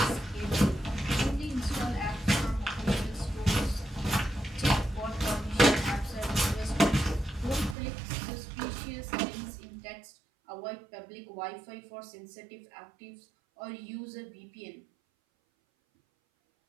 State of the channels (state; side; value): drops out; left; at 7.8 s